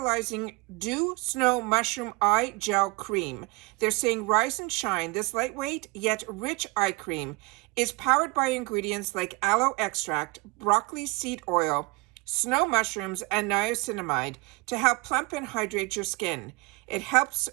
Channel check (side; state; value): left; quieter; 26.5 dB